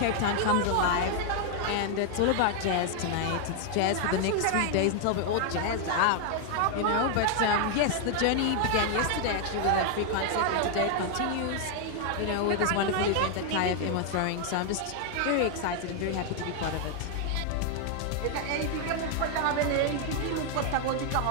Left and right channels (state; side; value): different; both; correlation 0.00